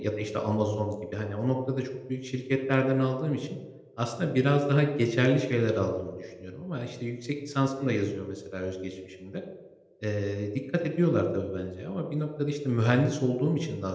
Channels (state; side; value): identical; both; correlation 1.00